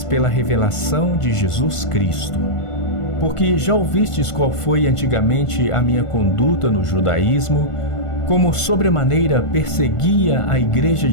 pela revelação de Jesus Cristo. Porque já ouvistes qual foi antigamente a minha conduta no judaísmo, como sobremaneira perseguia a igreja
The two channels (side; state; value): right; late; 1.5 ms